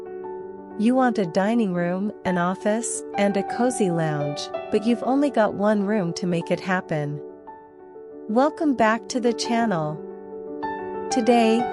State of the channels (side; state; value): both; identical; correlation 1.00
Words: You want a dining room, an office, and a cozy lounge, but you've only got one room to make it happen. Welcome back to the channel. Today,